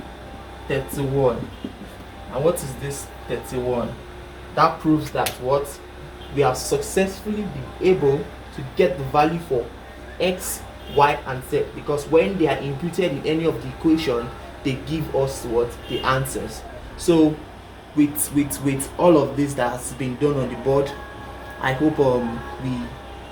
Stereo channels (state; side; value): identical; both; correlation 1.00